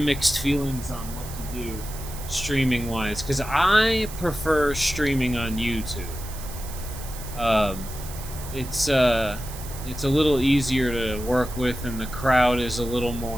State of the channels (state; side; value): noise; right; hiss, 14 dB below the sound